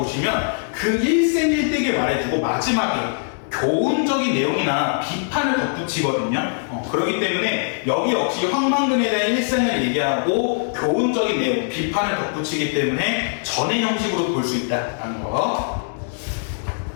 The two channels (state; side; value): silent; right; 65 dB below the other